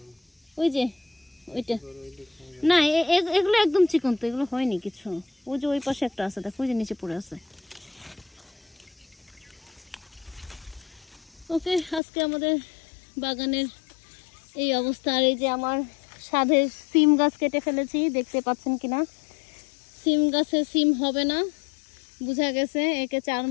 ওই যে ওইটা না, এগুলো একদম চিকন তো, এগুলো হয়নি কিছু। ওই যে ওই পাশে একটা আছে, দেখো ওই যে নিচে পড়ে আছে। ওকে, আজকে আমাদের বাগানের এই অবস্থা। আর এই যে আমার সাধের সিম গাছ কেটে ফেলেছি, দেখতে পাচ্ছেন কিনা। সিম গাছে সিম হবে না বোঝা গেছে, একে 4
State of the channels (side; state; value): right; drops out; at 12.0 s